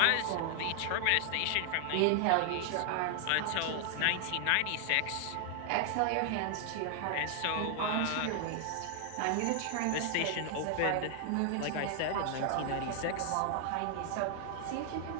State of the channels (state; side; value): different; both; correlation 0.00